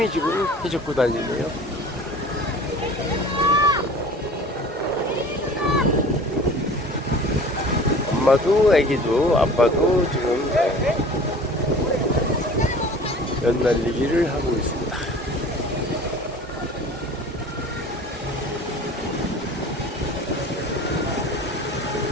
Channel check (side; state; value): both; normal; correlation 0.43